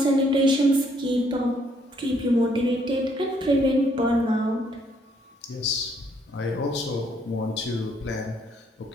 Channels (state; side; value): normal; both; correlation 0.68